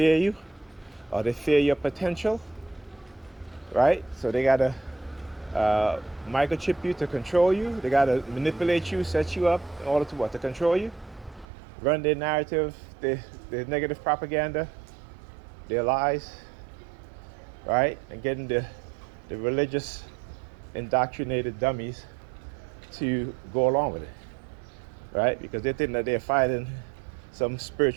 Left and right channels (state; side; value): drops out; left; at 11.5 s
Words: you, or they fear your potential, right? So they gotta microchip you to control you. They gotta manipulate you, set you up in order to what? To control you, run their narrative, their negative propaganda, their lies, right? And getting the religious indoctrinated dummies to go along with it, right? Because they think that they're fighting some